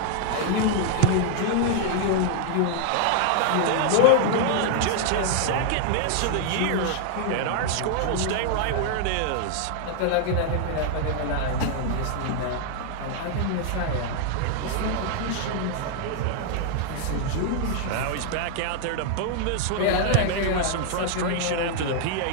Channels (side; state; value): both; different; correlation -0.01